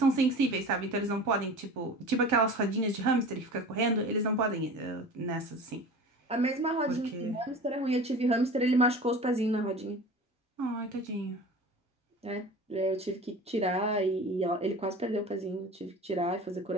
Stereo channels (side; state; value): both; normal; correlation 0.37